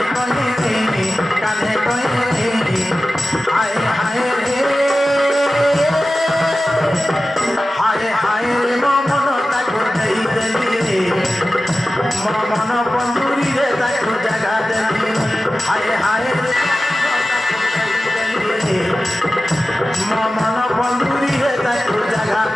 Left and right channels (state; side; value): normal; both; correlation 0.95